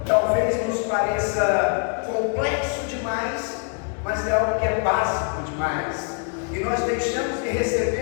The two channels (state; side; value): quieter; right; 38.0 dB